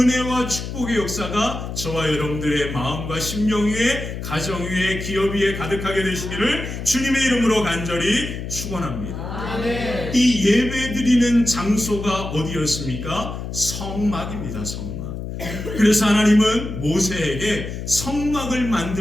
축복의 역사가 저와 여러분들의 마음과 심령 위에, 가정 위에, 기업 위에 가득하게 되시기를 주님의 이름으로 간절히 축원합니다. 아멘. 이 예배드리는 장소가 어디였습니까? 성막입니다. 성막. 그래서 하나님은 모세에게 성막을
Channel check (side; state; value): left; noise; hum, 7 dB below the sound